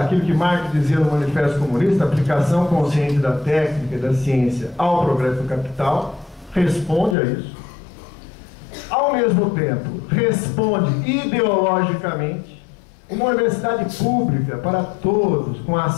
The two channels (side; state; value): right; drops out; at 7.2 s